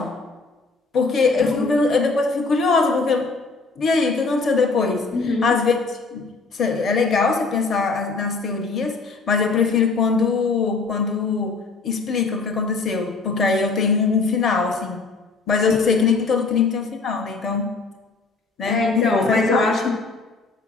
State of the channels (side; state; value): right; quieter; 4.1 dB